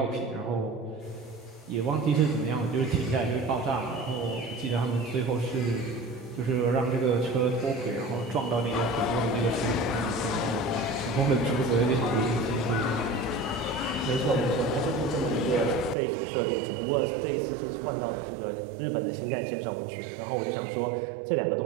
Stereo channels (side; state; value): left; drops out; at 16.0 s